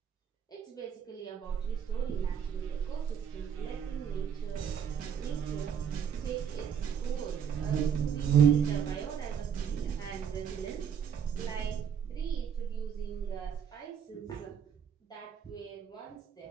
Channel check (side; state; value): left; quieter; 7.9 dB